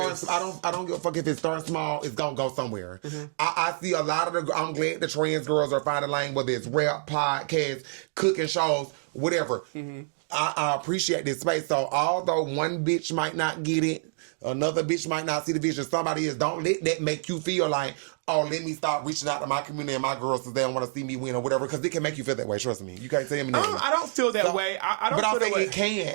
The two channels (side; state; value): left; silent; 60 dB below the other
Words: I don't give a fuck if it starts small. It's gonna go somewhere. Mm-hmm. I see a lot of I'm glad the trans girls are finding lane, whether it's rap, podcasts, cooking shows, whatever. Mm-hmm. I appreciate this space. So although one bitch might not get it, another bitch might not see the vision. Somebody is. Don't let that make you feel like oh, let me start reaching out to my community and my girls because they don't want to see me win or whatever. Because it can make you feel that way. Trust me. You can't tell me nothing. I don't feel that way. I don't. But feel I think that way. it